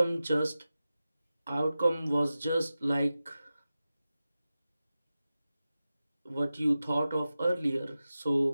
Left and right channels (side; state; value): both; inverted; correlation -0.94